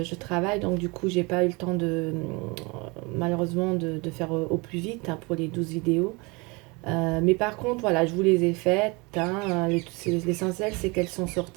travaille, donc du coup, j'ai pas eu le temps malheureusement, de faire au plus vite hein, pour les 12 vidéos. Mais par contre, voilà, je vous les ai faites, hein. L'essentiel, c'est qu'elles sont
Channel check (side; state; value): left; quieter; 27.3 dB